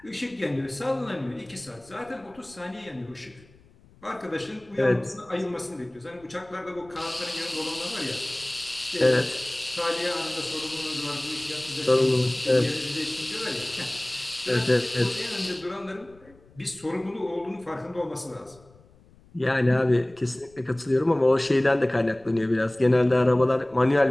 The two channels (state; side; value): noise; left; rumble, 27 dB below the sound